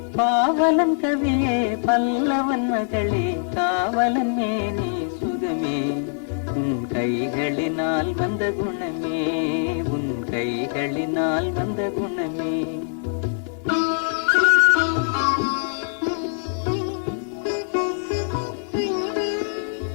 பாவலன் கவியே பல்லவன் மகளே, காவலன் மேனி சுகமே. உன் கைகளினால் வந்த குணமே, உன் கைகளினால் வந்த குணமே.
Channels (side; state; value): right; silent; 56 dB below the other